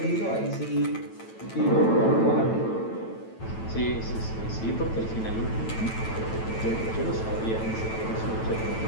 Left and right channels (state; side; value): late; right; 9.1 ms